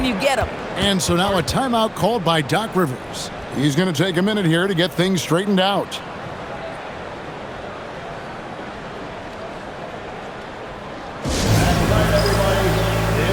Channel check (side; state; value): both; identical; correlation 1.00